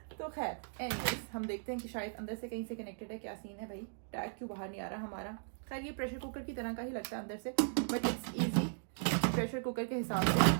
तो खैर एनीवेज, हम देखते हैं कि शायद अंदर से कहीं से कनेक्टेड है, क्या सीन है भाई, टैग क्यों बाहर नहीं आ रहा हमारा। खैर ये प्रेशर कुकर की तरह का ही लगता है अंदर से, but it's easy. Pressure cooker के हिसाब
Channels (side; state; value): left; silent; digital silence